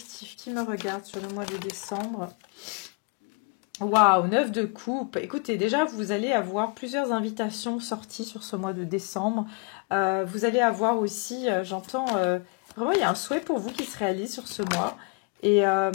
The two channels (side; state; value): right; quieter; 33.5 dB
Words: qui me regarde sur le mois de décembre? Waouh, 9 de coupe. Écoutez, déjà, vous allez avoir plusieurs invitations sorties sur ce mois de décembre. Vous allez avoir aussi, j'entends, Vraiment, il y a un souhait pour vous qui se réalise sur ce mois. Et